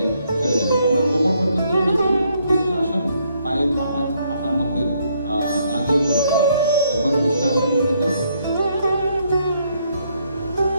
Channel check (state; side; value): inverted; both; correlation -0.71